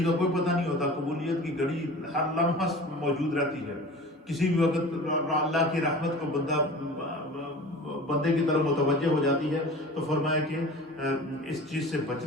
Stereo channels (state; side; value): normal; both; correlation 0.39